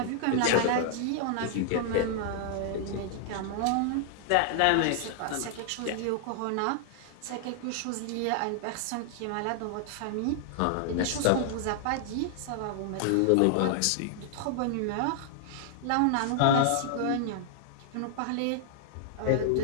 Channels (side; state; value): both; different; correlation -0.01